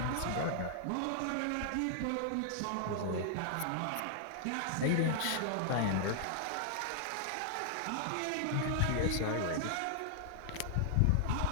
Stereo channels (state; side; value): different; both; correlation -0.01